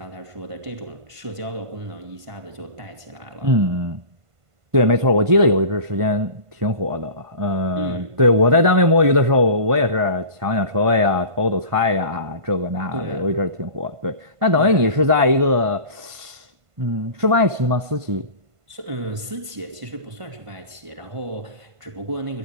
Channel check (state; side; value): late; left; 1.5 ms